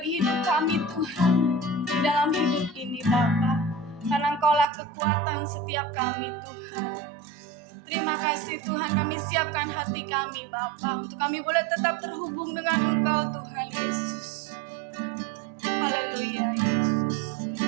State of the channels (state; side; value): drops out; left; at 4.7 s